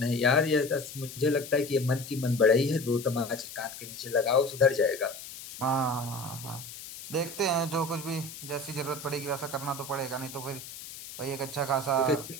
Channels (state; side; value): noise; left; hiss, 12 dB below the sound